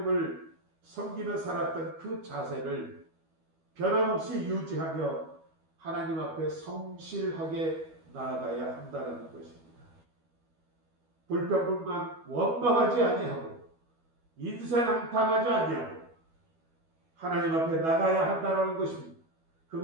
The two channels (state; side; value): late; left; 12 ms